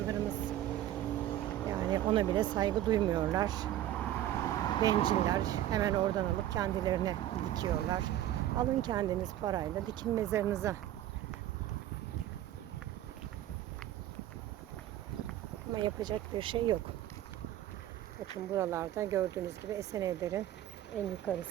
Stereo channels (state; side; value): quieter; left; 12.9 dB